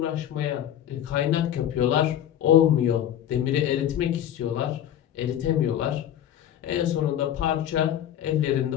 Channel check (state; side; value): quieter; right; 11.0 dB